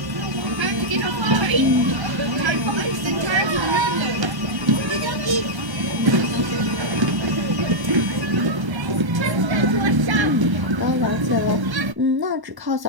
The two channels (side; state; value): left; late; 1.1 ms